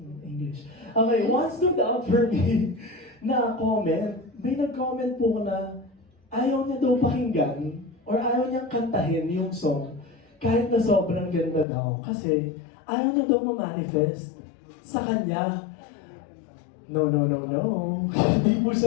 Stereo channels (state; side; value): drops out; right; at 11.7 s